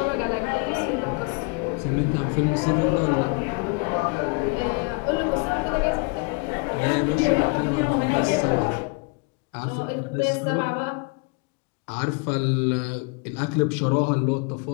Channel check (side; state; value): right; quieter; 30.4 dB